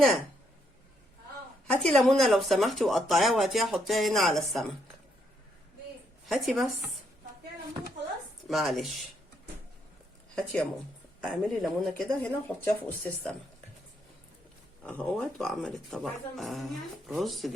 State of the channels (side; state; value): both; normal; correlation 0.74